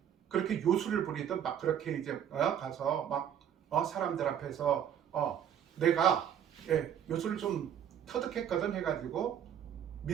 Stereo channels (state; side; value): quieter; left; 9.3 dB